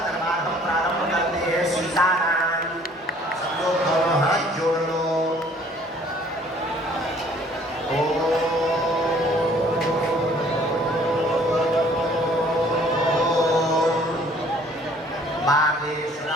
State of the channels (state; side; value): normal; both; correlation 0.57